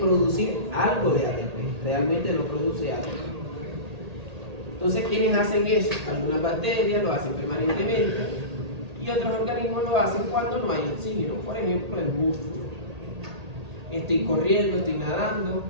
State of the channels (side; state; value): left; late; 1.8 ms